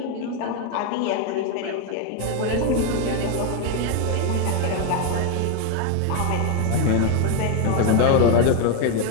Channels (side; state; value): both; different; correlation 0.01